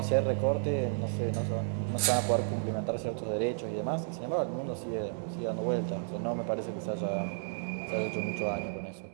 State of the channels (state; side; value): silent; left; digital silence